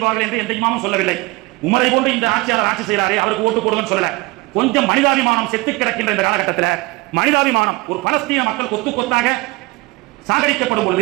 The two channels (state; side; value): quieter; left; 22.7 dB